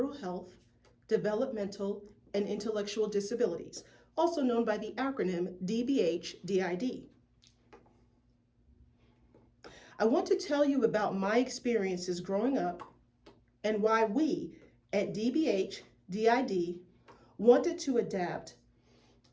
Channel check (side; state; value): both; identical; correlation 1.00